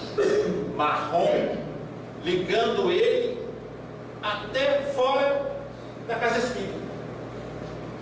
marrom ligando ele até fora da casa espírita.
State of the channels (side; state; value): both; identical; correlation 1.00